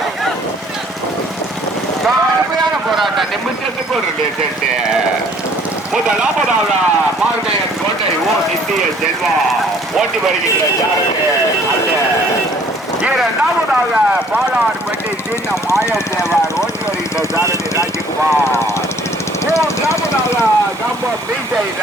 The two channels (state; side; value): normal; both; correlation 0.58